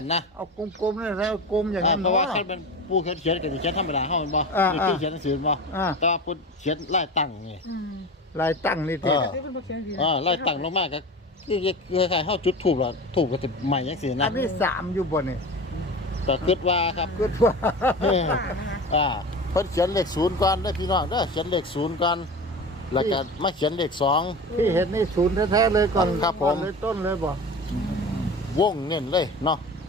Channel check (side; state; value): both; normal; correlation 0.31